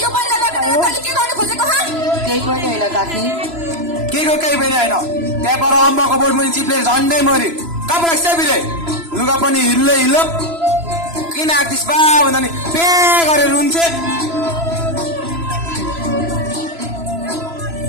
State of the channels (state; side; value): late; left; 3.0 ms